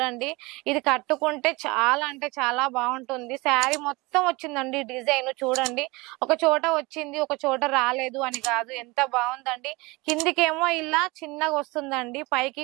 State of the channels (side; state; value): left; quieter; 24.1 dB